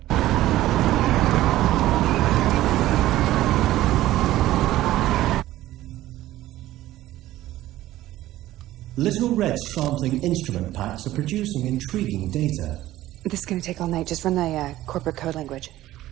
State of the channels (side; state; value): left; quieter; 15.1 dB